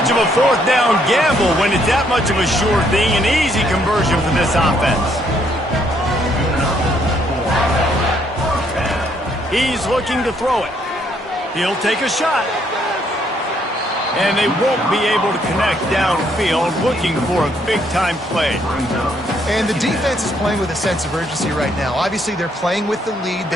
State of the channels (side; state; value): both; normal; correlation 0.70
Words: of a fourth down gamble when it's that much of a sure thing. An easy conversion for this offense. He's looking to throw it. He'll take a shot. And they won't be able to connect downfield, looking for a big-time play. And the defense is playing with a sense of urgency right now. Obviously, they're playing with the lead.